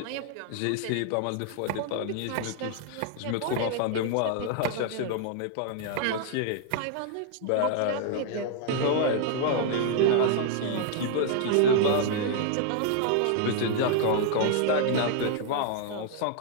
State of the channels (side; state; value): both; different; correlation 0.00